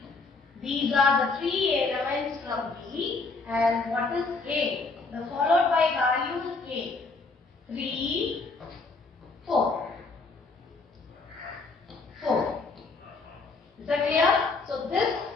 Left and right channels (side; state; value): right; quieter; 3.9 dB